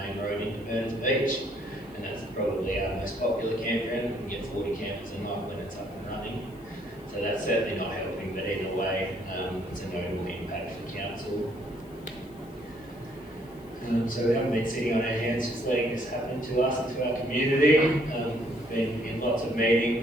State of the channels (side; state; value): left; noise; hiss, 28 dB below the sound